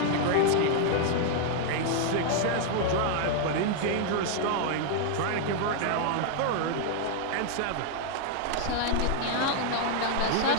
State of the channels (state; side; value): different; both; correlation 0.00